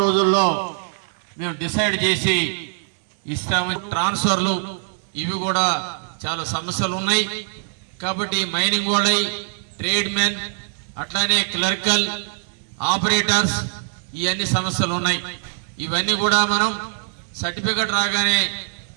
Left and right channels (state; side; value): silent; left; digital silence